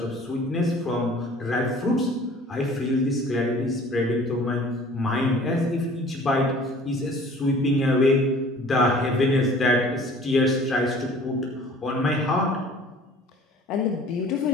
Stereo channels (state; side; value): normal; both; correlation 0.49